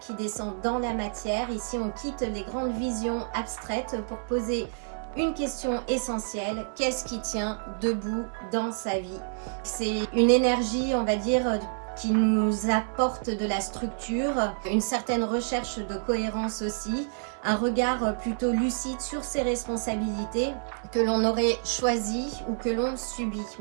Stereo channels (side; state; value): left; silent; digital silence